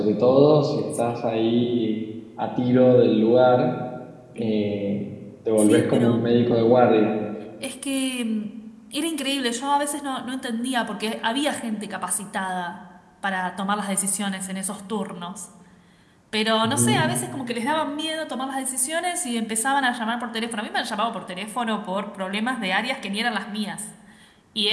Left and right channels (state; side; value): identical; both; correlation 1.00